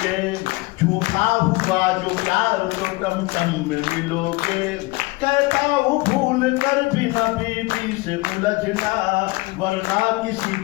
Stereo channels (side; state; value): right; quieter; 23.2 dB